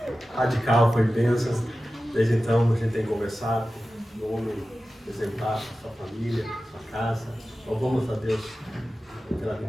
radical, foi bênção. Desde então a gente tem conversado, um homem exemplar, sua família, sua casa. Louvamos a Deus pela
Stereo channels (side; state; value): both; normal; correlation 0.94